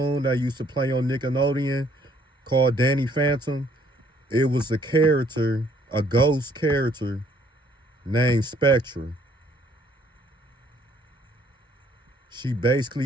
that used to play on Nickelodeon called Danny Phantom, it was a character, a ghost character named Spectra. She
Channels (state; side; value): normal; both; correlation 0.64